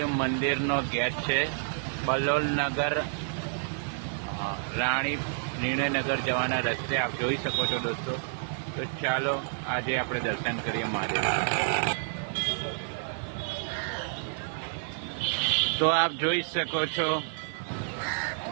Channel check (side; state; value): left; silent; 58 dB below the other